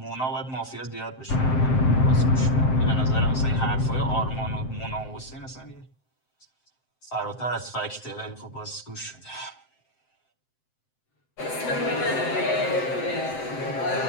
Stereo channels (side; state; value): right; late; 7.7 ms